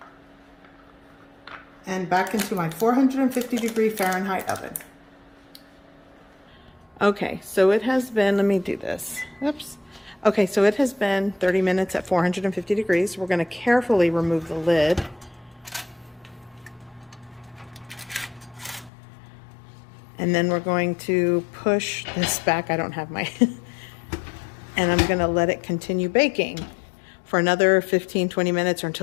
and back into my 450 degree Fahrenheit oven. Okay, so it has been, let me do this. Oops. Okay, so it has been 30 minutes at 450 degrees. We're going to carefully remove the lid. And then we're going to push this back. I don't have my, and I'm going to let it continue baking for another 15-20 minutes or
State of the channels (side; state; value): right; drops out; at 18.9 s